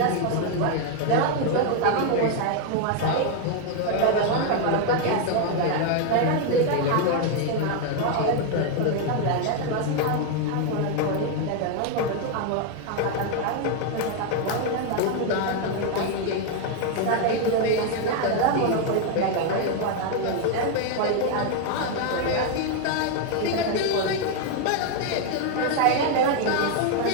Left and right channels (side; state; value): both; different; correlation 0.00